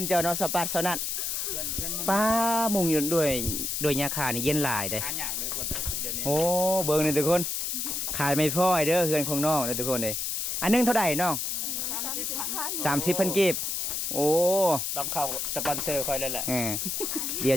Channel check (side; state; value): left; noise; hiss, 1 dB below the sound